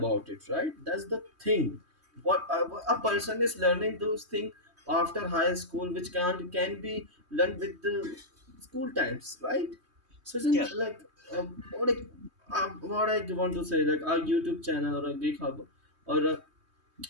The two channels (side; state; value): left; late; 3.2 ms